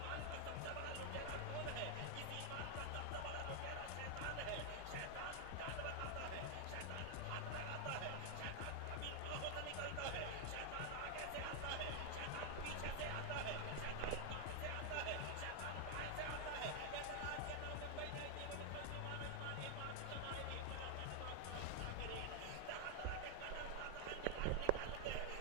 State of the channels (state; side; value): different; both; correlation 0.00